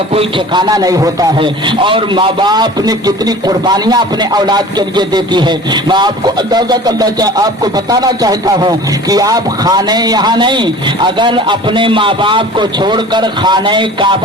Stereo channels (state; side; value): normal; both; correlation 0.42